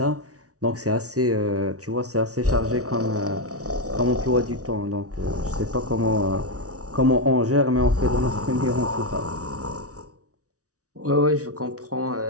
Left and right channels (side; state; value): left; late; 0.67 ms